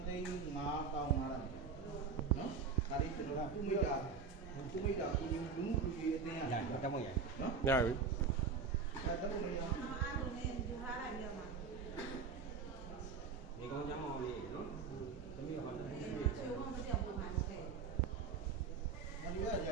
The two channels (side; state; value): left; quieter; 5.4 dB